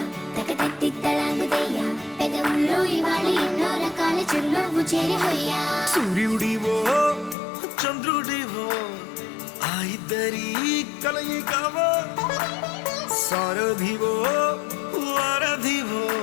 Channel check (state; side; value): drops out; right; at 7.4 s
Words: తకతత్తిత్తలాంగుదయ్య పెదవుల్లో ఇవాళ ఎన్నో రకాల చిరునవ్వు చేరి హొయ్యా సూర్యుడివో చంద్రుడివో ఆ ఇద్దరి కలయికవో సారథివో వారధివో